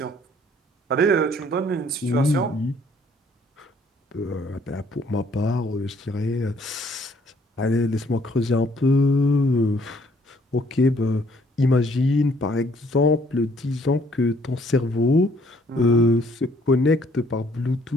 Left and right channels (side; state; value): both; normal; correlation 0.63